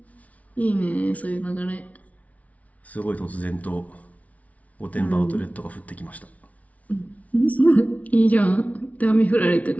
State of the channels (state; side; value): late; right; 0.068 ms